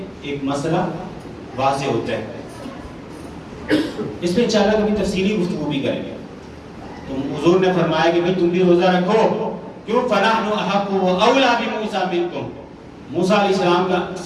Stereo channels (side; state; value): both; identical; correlation 1.00